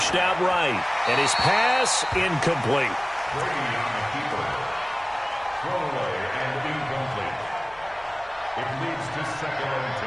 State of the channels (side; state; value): right; noise; hum, 27 dB below the sound